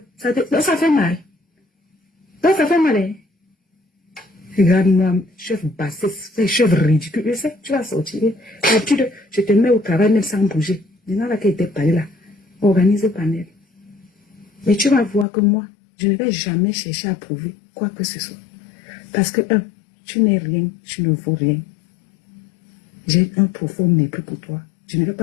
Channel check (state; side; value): drops out; right; at 15.2 s